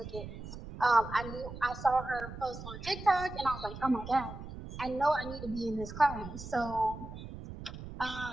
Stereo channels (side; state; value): right; noise; rumble, 11 dB below the sound